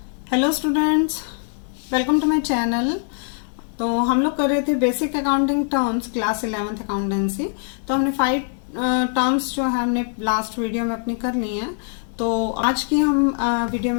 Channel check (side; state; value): right; silent; 58 dB below the other